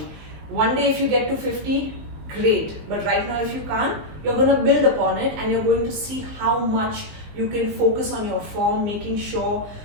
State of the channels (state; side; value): late; left; 19 ms